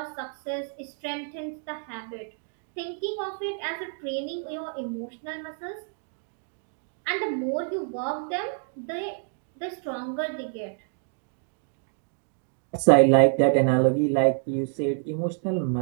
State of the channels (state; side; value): silent; left; 57 dB below the other